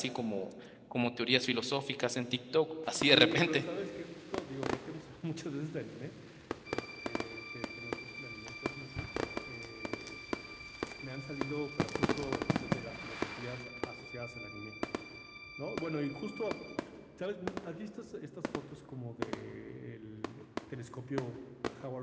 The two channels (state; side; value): identical; both; correlation 1.00